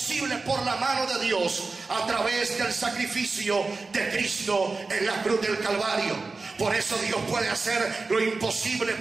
por la mano de Dios a través del sacrificio de Cristo en la cruz del Calvario. Por eso Dios puede hacer lo imposible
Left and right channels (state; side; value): quieter; left; 3.9 dB